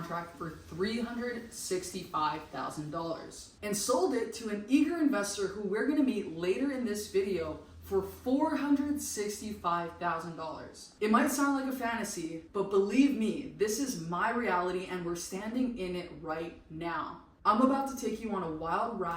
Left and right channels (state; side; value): identical; both; correlation 1.00